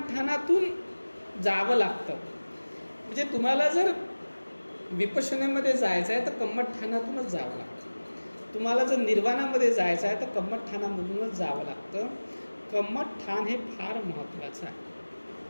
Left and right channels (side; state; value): both; inverted; correlation -1.00